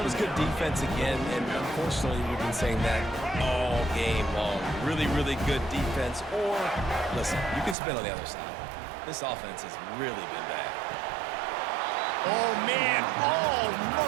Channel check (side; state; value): left; drops out; at 7.8 s